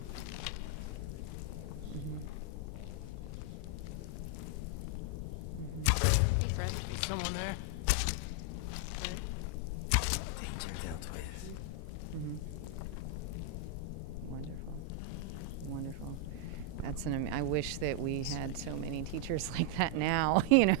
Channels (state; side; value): different; both; correlation 0.00